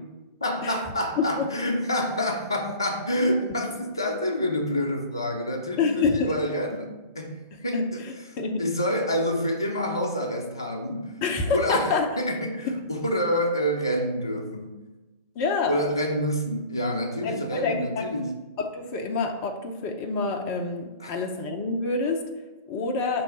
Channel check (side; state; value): both; inverted; correlation -0.42